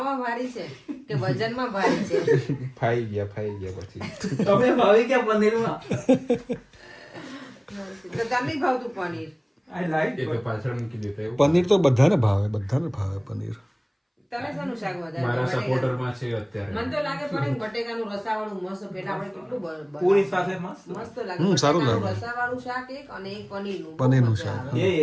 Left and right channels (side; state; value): both; identical; correlation 1.00